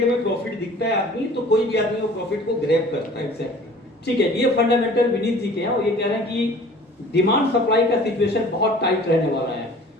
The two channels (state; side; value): normal; both; correlation 0.47